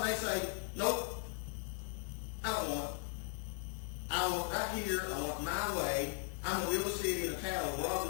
they say, nope, I don't want it. I want right here. I want my way. I'm going to build a city in a town. We're all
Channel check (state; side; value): silent; right; 52 dB below the other